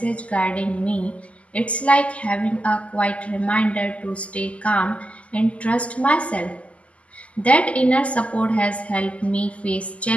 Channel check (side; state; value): right; late; 0.065 ms